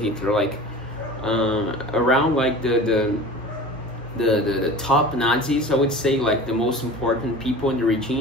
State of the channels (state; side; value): normal; both; correlation 0.38